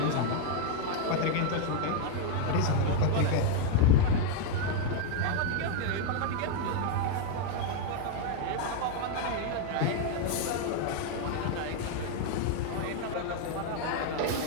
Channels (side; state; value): both; different; correlation 0.01